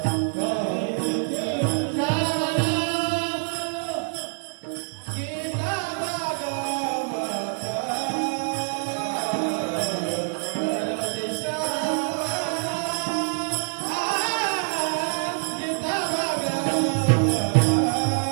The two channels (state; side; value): silent; left; 59 dB below the other